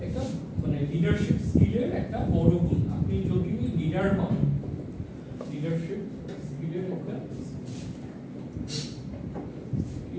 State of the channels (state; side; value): identical; both; correlation 1.00